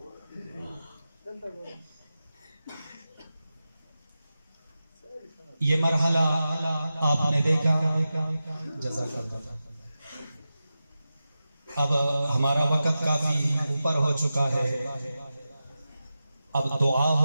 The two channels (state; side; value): inverted; both; correlation -0.92